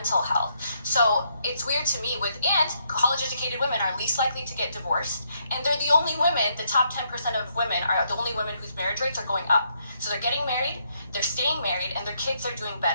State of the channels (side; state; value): both; inverted; correlation -0.75